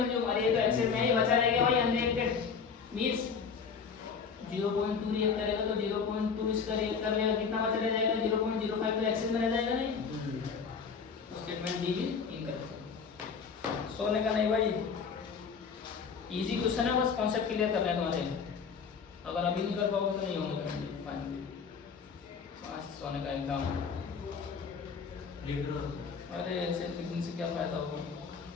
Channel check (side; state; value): right; quieter; 5.9 dB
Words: अरे ये तो एक्सेस में ही बचा रहेगा भाई अनरिएक्टेड, मींस 0.2 रिएक्ट करेगा तो 0.2 इसका रिएक्ट कर लेगा, कितना बचा रह जाएगा 0.05, तो एक्सेस में रह जाएगा नहीं, तो स्टेटमेंट डी भी इनकरेक्ट। सोने का नहीं भाई, इजी क्वेश्चन है, बस कॉन्सेप्ट क्लियर कर रहे हैं तुम्हारे, अगर अभी नहीं कर पाओगे तो नहीं होने करेंगे फाइनली। सोने का एग्जाम, अरे ऐसे लिखने से क्या फायदा होगा